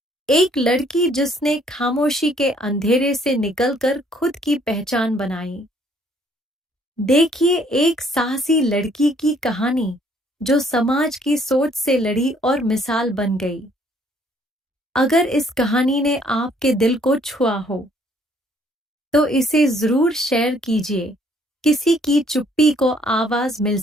एक लड़की जिसने खामोशी के अंधेरे से निकलकर खुद की पहचान बनाई। देखिए एक साहसी लड़की की कहानी, जो समाज की सोच से लड़ी और मिसाल बन गई। अगर इस कहानी ने आपके दिल को छुआ हो, तो इसे जरूर शेयर कीजिए। किसी की चुप्पी को आवाज मिल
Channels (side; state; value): both; normal; correlation 0.64